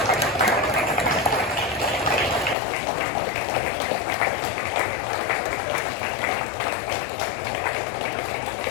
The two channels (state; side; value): drops out; right; at 2.6 s